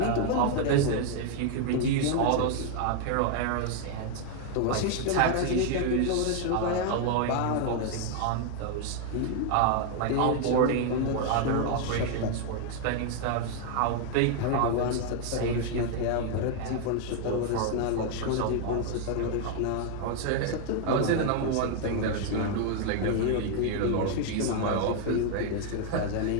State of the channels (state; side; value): different; both; correlation 0.00